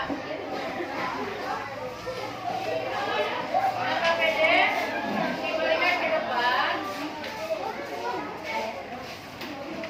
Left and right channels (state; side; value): identical; both; correlation 1.00